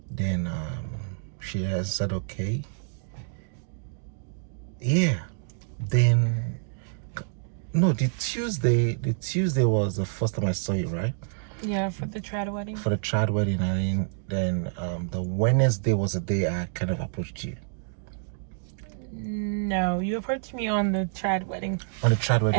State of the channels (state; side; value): silent; left; digital silence